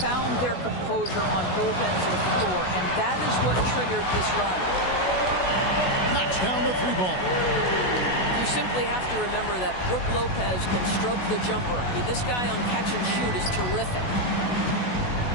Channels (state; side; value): late; right; 16 ms